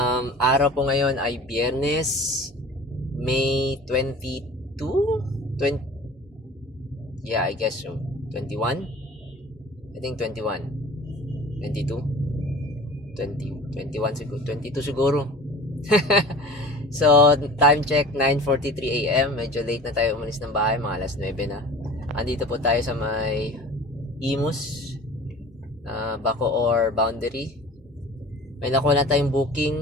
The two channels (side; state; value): both; normal; correlation 0.41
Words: po ngayon ay Biyernes, May 22? 20, yeah, I guess so. 21? I think 21. 22? 20, 21 siguro. 22 siguro. So, time check 9:43 AM. Medyo late na tayo umalis ng bahay, mga alas 9 na. Andito po tayo sa may Imus, Bacoor boundary. May nakuha na tayong